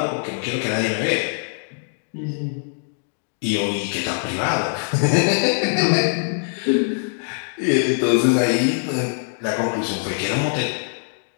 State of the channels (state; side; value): silent; right; digital silence